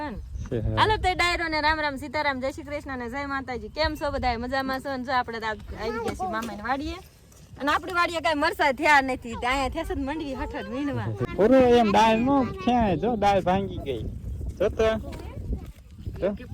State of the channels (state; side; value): identical; both; correlation 1.00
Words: ને હાલો તે ડાયરો ને રામ રામ સીતારામ જય શ્રી કૃષ્ણ ને જય માતાજી કેમ છો બધા મજામાં છો ને જો આપણે આવી ગયા છીએ મામાની વાડીએ અને આપણી વાડીએ કઈ મરસા થયા નથી ત્યાં થેસ જ મંડવી હટટ વીણવા પૂરો એમ દાળ નો ક્યાં જો દાળ ભાંગી ગઈ જો તો કે